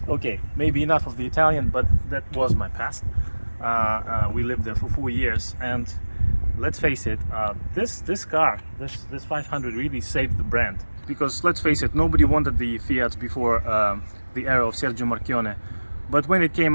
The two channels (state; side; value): inverted; both; correlation -1.00